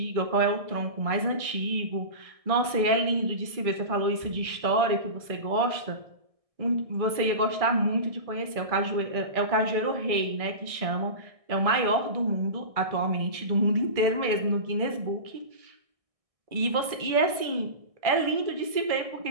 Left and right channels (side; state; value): left; late; 1.6 ms